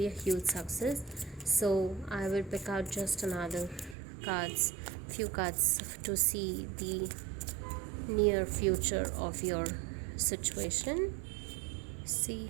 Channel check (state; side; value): drops out; left; at 4.0 s